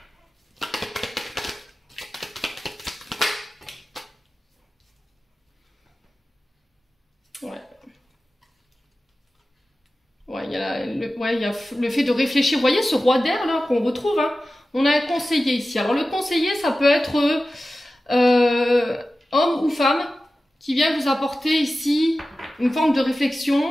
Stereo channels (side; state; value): both; normal; correlation 0.95